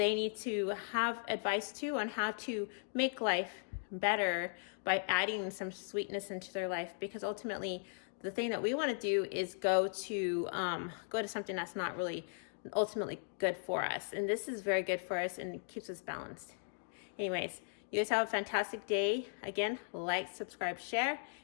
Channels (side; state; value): right; silent; digital silence